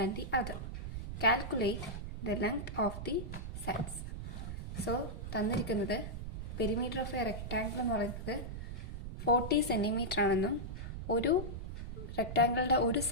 the other. Calculate the length of the sides. So തന്നിരിക്കുന്നത് perimeter of A rectangle എന്ന് പറയുന്നത് 40 centimetre ആണെന്നും ഒരു റെക്ടാങ്കിളിൻ്റെ ഒരു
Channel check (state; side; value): noise; right; rumble, 7 dB below the sound